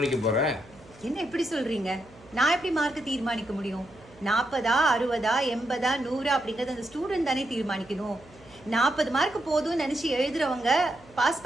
போற. என்ன எப்படி சொல்றீங்க? நான் எப்படி மார்க்கை தீர்மானிக்க முடியும்? 40, 60, 80, 100 அப்படிங்கிறது அந்த ஸ்டூடெண்ட் தானே தீர்மானிக்கணும். 40 மார்க் போதும்னு நினைச்சு எழுதுறவங்க பாஸ்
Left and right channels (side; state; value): right; noise; hum, 24 dB below the sound